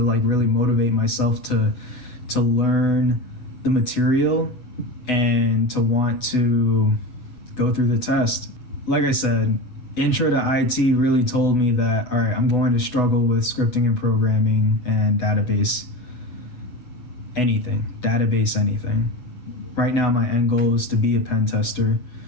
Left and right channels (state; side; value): late; right; 8.0 ms